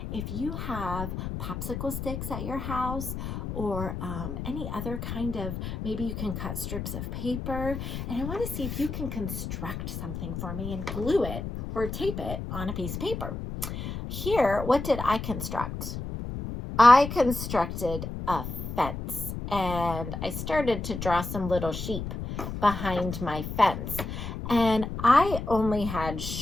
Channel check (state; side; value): noise; left; rumble, 6 dB below the sound